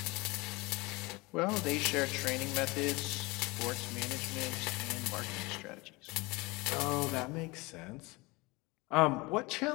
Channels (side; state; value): right; quieter; 24.5 dB